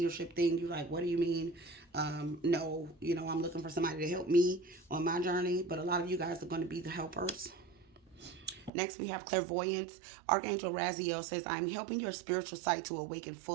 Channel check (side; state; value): left; drops out; at 8.7 s